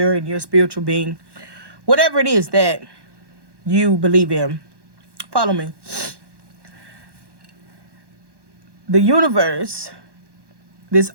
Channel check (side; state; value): left; late; 1.1 ms